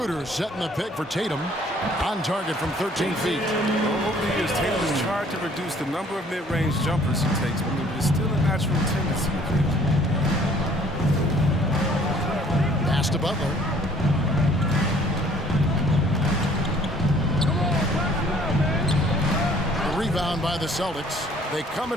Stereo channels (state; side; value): normal; both; correlation 0.57